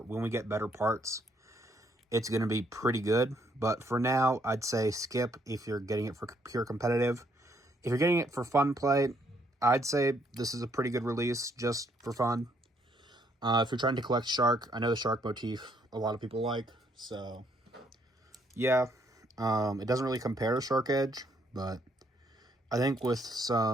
we get better parts, it's going to be pretty good. But for now, I'd say skip if you're getting it for pure competitive. If you're getting it for fun play, I'd say this is a pretty good release just for fun. If you're trying to collect shark, I know the shark motif a lot of people like. So, yeah. It doesn't really compare to Shark Edge, but I think with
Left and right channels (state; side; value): normal; both; correlation 0.70